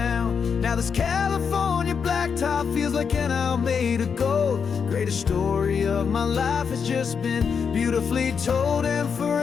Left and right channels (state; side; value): quieter; right; 6.4 dB